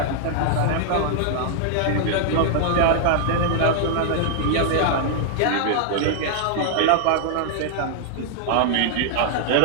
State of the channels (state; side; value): different; both; correlation -0.01